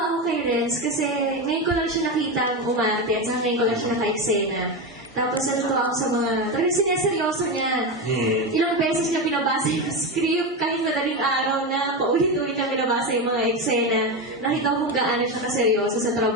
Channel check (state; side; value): normal; both; correlation 0.15